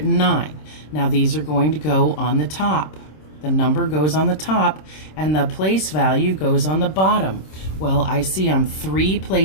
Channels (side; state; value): right; late; 26 ms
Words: Now these are going to go on the top. The number goes on the top and the place value goes on the bottom. Well, I see I'm 3